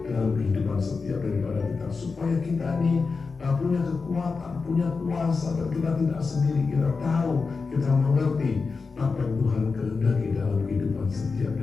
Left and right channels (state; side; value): quieter; right; 4.6 dB